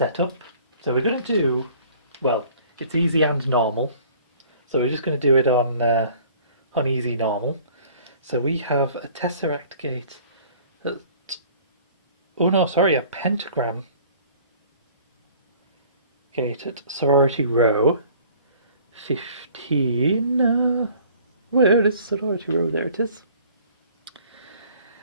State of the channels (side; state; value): both; inverted; correlation -0.52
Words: So we're going to do, well, it's easy and normal. So we're just going to do it on easy normal. So we have a tesseract gate at, a pentagram gate at Sorority Row 15. Where is Sorority Row? There it is.